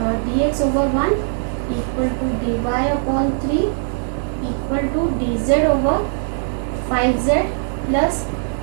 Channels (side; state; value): left; silent; 65 dB below the other